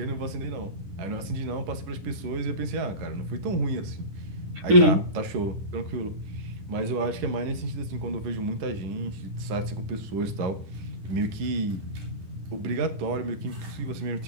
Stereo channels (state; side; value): late; left; 10 ms